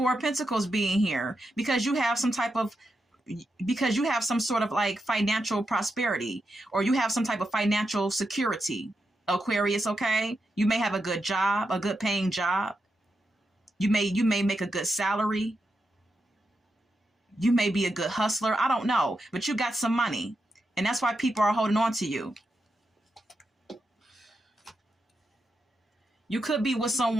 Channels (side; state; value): both; normal; correlation 0.86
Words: of Pentacles being here, because you have some sort of like financial prosperity, or you have some type of financial security, Aquarius, okay? You may have a good job, a good paying job. You may make a good salary. You may be a good hustler. I don't know, but you got some money, and that's why people are holding on to you. You could be with